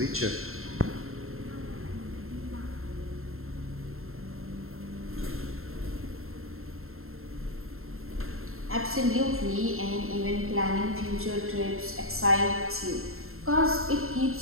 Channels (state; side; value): late; left; 0.62 ms